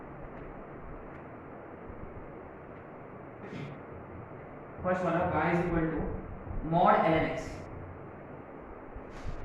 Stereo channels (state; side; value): identical; both; correlation 1.00